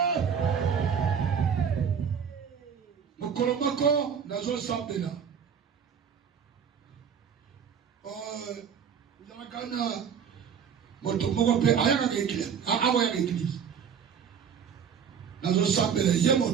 mokolo moko nazosambela kana moto moko pe ayaka église awa église nazo sambela ye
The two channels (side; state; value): left; quieter; 7.3 dB